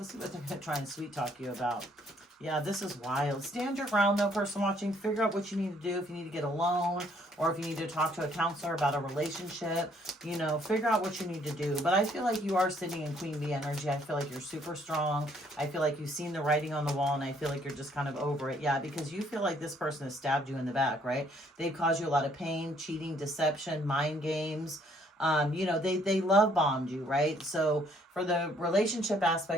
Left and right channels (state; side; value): normal; both; correlation 0.65